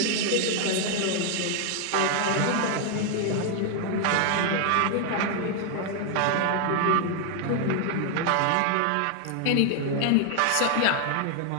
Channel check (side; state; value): both; different; correlation 0.00